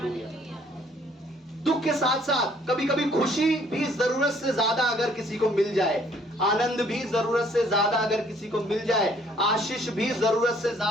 दुख के साथ साथ कभी कभी खुशी भी जरूरत से ज्यादा अगर किसी को मिल जाए, आनंद भी जरूरत से ज्यादा अगर किसी को मिल जाए, आशीष भी जरूरत से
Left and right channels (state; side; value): normal; both; correlation 0.62